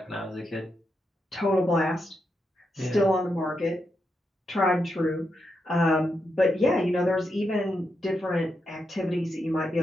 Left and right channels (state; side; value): normal; both; correlation 0.84